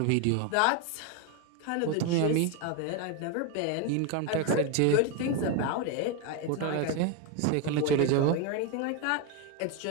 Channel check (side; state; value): both; different; correlation 0.02